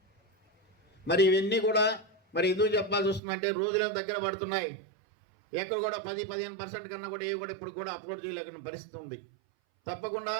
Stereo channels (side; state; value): left; drops out; at 3.2 s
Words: మరి ఇవన్నీ కూడా మరి ఎందుకు చెప్పాల్సి వస్తుందంటే రోజులను దగ్గర పడుతున్నాయి. ఎక్కడ కూడా 10-15% కన్నా కూడా ఏవి కూడా ఇప్పుడు కూడా అప్లోడ్ చేయలేకున్న పరిస్థితి ఉంది. తప్పకుండా